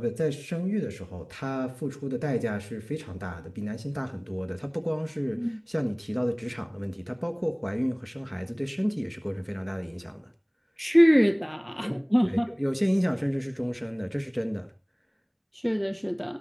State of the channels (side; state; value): both; identical; correlation 1.00